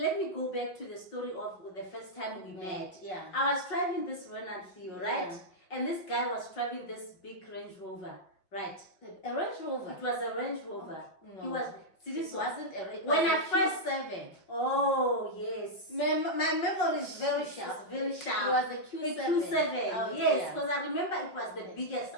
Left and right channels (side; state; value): right; late; 5.7 ms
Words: me go back to the story of the first time we met. Yeah. I was driving this Renault Clio, right? Yeah. And this guy was driving this big Range Rover, right? A Range Rover. It was a Range Rover. No. He was. It wasn't a Range. When was I a first Q7. Oh yes. My memory is very sharp. Very sharp. It was a Q7. A Q7. Oh, yes, because I remember it was the biggest